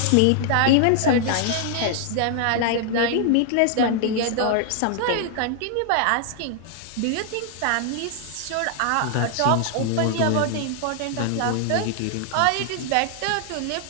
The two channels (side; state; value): both; different; correlation 0.00